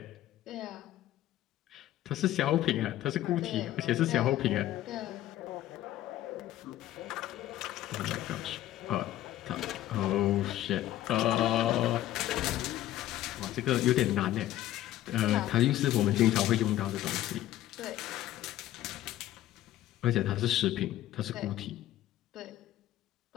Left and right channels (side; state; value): right; quieter; 13.8 dB